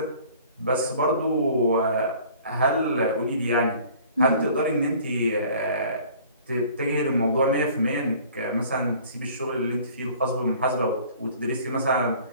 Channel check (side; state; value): both; inverted; correlation -0.50